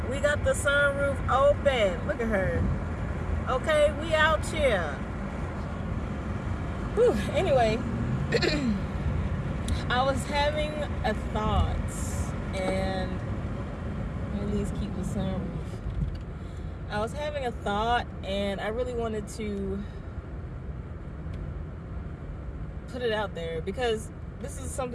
We got the sunroof open. Look at her. Okay, we out here. Whew. Anyway, I was having a thought, and at least keep the sunroof. I was having a thought, and I really wanted to put it out there because this is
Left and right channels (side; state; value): both; identical; correlation 1.00